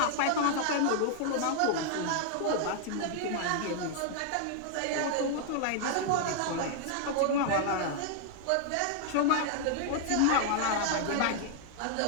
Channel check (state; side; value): different; both; correlation 0.00